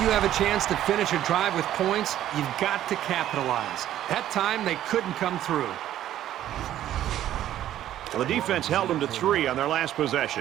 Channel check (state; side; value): quieter; left; 12.2 dB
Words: you have a chance to finish a drive with points, you've got to capitalize. That time, they couldn't come through. Well, the defense held them to 3 on their last